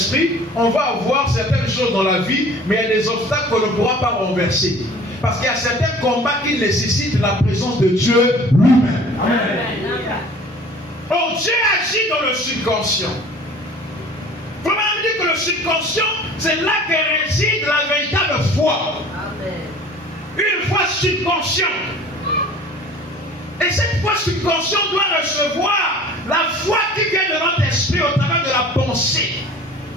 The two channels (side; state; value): both; normal; correlation 0.46